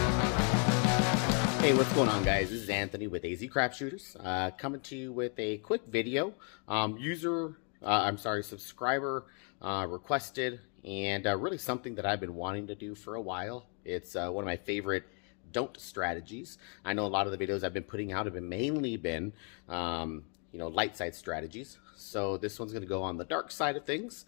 what's going on, guys? This is Anthony with AZ Crap Shooters, coming to you with a quick video. Subscriber requested, and really something that I've been wanting to do for a while. It's one of my favorite don't strategies. I know a lot of the videos I've been putting out have been mainly light side strategies. So this one's going to go on the dark side of things,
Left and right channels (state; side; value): quieter; right; 39.7 dB